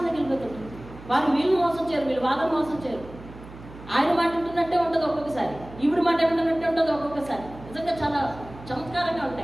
వాళ్ళు వీళ్ళు మోసం చేయరు, వీళ్ళు వాళ్ళని మోసం చేయరు. ఆయన మాట వింటున్నట్టే ఉంటుంది ఒక్కొక్కసారి, ఈవిడ మాట వింటున్నట్టే ఉంటుంది ఒక్కొక్కసారి. నిజంగా చాలా చమత్కారంగా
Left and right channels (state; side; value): noise; right; hum, 17 dB below the sound